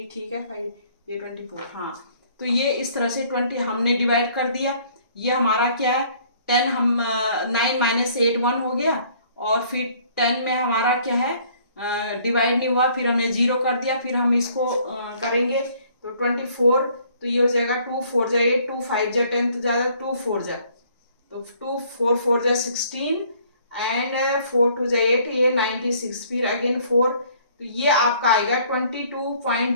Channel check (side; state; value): both; inverted; correlation -0.59